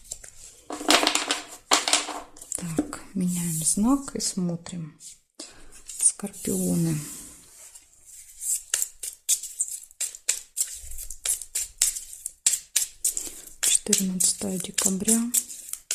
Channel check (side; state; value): both; identical; correlation 1.00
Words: Так, меняем знак и смотрим. Скорпионы. — 14 декабря,